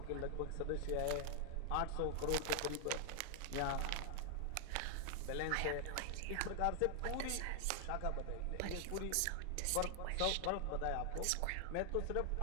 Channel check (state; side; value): different; both; correlation 0.00